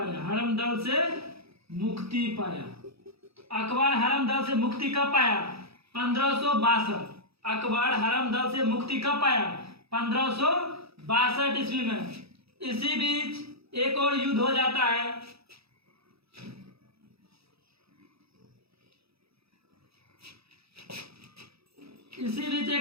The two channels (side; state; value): left; late; 0.77 ms